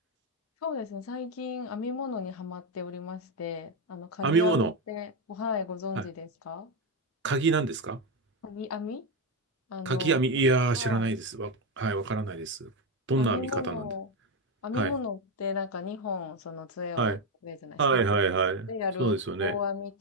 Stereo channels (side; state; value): both; normal; correlation 0.09